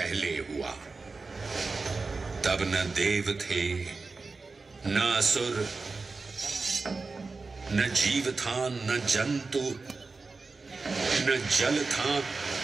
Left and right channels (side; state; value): left; quieter; 4.0 dB